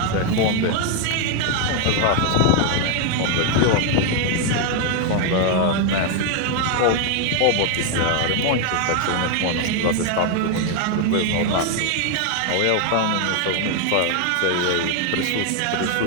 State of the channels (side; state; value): both; different; correlation 0.01